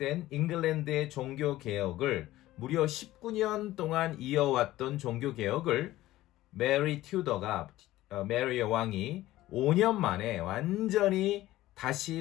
잉글랜드의 종교개혁을 무려 19년 동안 이어왔던 종교개혁을 메리 여왕이 5년 만에 완전히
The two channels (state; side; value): quieter; right; 15.9 dB